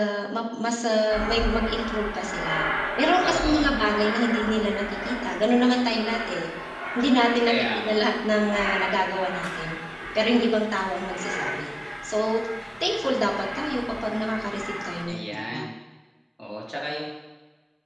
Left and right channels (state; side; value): identical; both; correlation 1.00